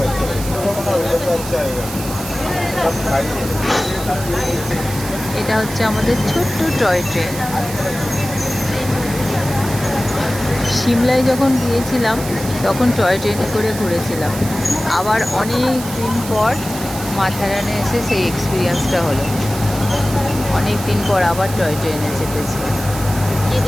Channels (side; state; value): right; noise; hiss, 11 dB below the sound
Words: এটা হচ্ছে আমাদের ছোট্ট টয় ট্রেন। সিমলায় যখন গিয়েছিলাম তখন টয় ট্রেনে করে ঘুরেছিলাম। আবার অনেক দিন পর মাথারানে এসে সেই এক্সপিরিয়েন্সটা হলো। অনেক দিন পর আবার টয় ট্রেনে চেপেছি।